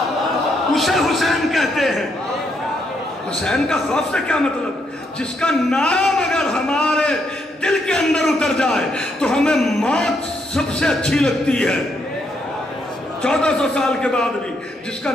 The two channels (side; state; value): both; normal; correlation 0.76